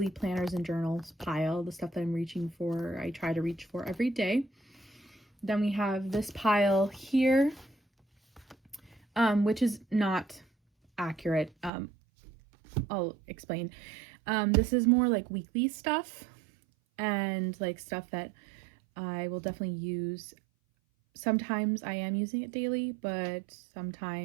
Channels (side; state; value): left; drops out; at 11.7 s